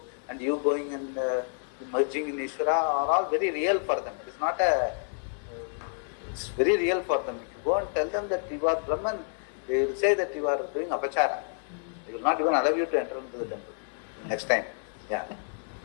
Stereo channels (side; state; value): right; silent; digital silence